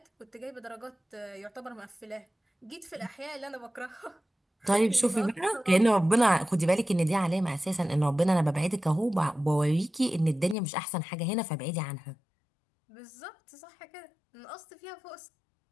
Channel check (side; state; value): right; drops out; at 10.6 s